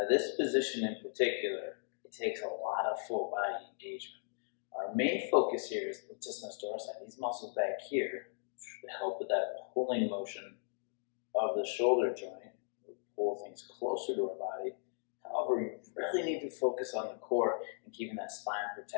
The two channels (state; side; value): silent; right; digital silence